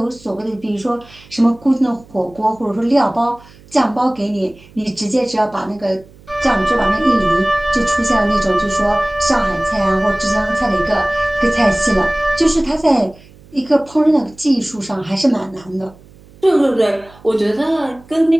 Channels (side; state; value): right; noise; hum, 24 dB below the sound